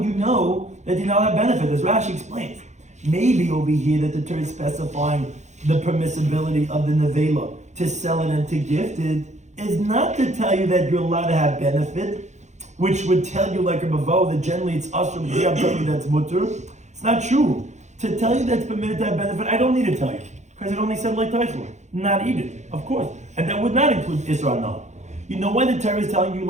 you know that you now have benefit? As Rashi explains, maybe over here that the Torah is specifying the permissibility of the nevela to sell it and to gift it is not to tell you that you're allowed to have benefit, which would tell you like a bavo that generally it's usher, but here I'm telling you that's mutter. It's not true. To tell you that's permitted to have benefit, I don't need to tell you. Because it only said like Teichel, not eat it, of course. And that would not include Isra no. You know why the Torah is telling you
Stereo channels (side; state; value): left; late; 0.34 ms